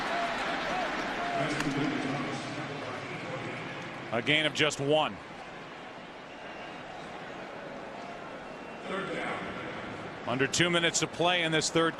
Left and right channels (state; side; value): identical; both; correlation 1.00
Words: A gain of just 1. Under 2 minutes to play in this 3rd